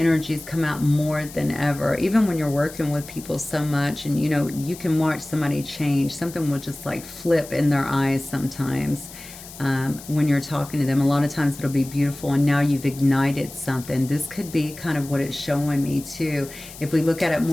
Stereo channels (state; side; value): noise; left; hiss, 16 dB below the sound